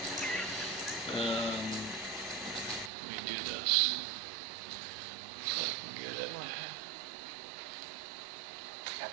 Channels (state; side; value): drops out; left; at 2.9 s